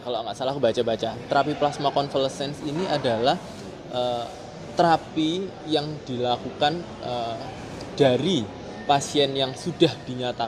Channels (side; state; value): both; identical; correlation 1.00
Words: aku baca-baca, terapi plasma convalescence ini adalah terapi yang dilakukan dari pasien yang sudah